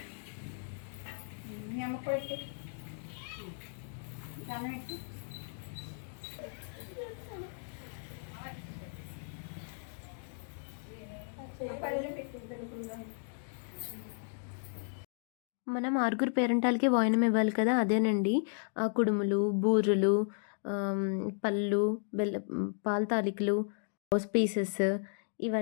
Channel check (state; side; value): silent; right; digital silence